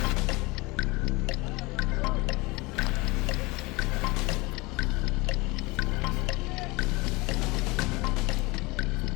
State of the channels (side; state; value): right; quieter; 23.8 dB